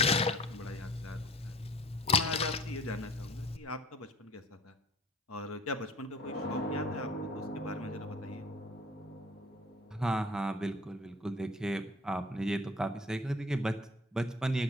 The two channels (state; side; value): normal; both; correlation 0.48